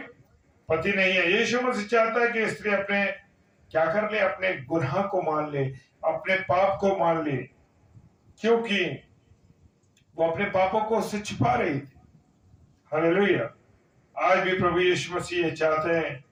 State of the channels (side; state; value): both; identical; correlation 1.00